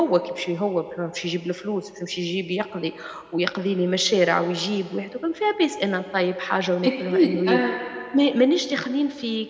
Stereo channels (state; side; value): identical; both; correlation 1.00